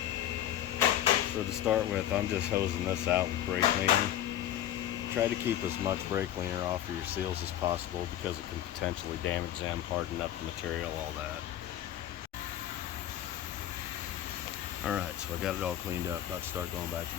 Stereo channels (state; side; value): quieter; right; 11.8 dB